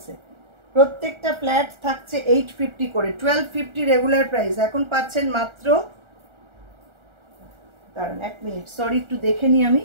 প্রত্যেকটা ফ্ল্যাট থাকছে 850 করে, 1250 রেগুলার প্রাইস। এখন পাচ্ছেন মাত্র, দাঁড়ান এক মিনিট, সরি একটু দেখে নিই আমি,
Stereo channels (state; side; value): late; left; 1.4 ms